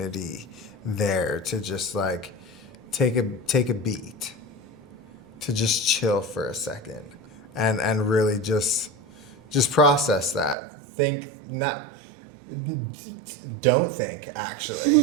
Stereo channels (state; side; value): drops out; left; at 10.6 s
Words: there to just like take a beat, to just chill for a second, and really just process that. Don't think,